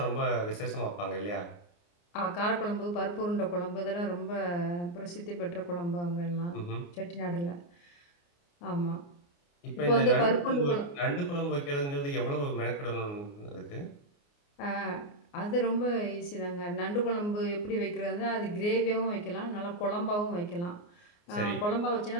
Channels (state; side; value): late; right; 29 ms